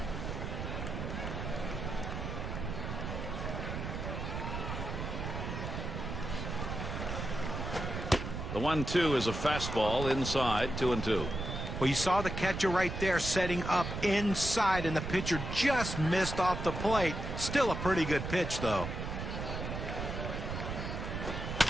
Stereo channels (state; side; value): noise; right; rumble, 5 dB below the sound